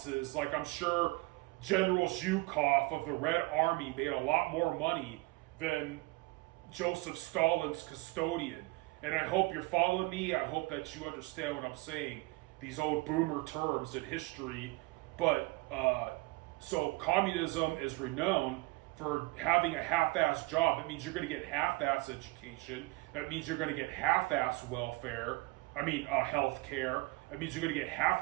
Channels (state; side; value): quieter; left; 23.2 dB